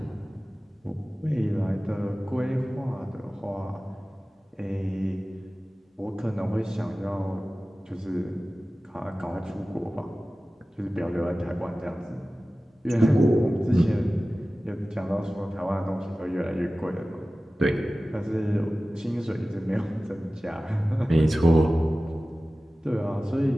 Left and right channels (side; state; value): both; normal; correlation 0.96